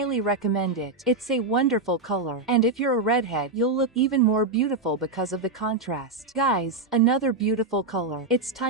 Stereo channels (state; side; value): quieter; left; 3.4 dB